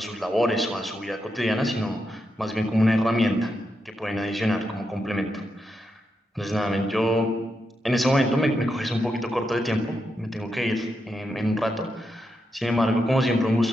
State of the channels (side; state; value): both; normal; correlation 0.84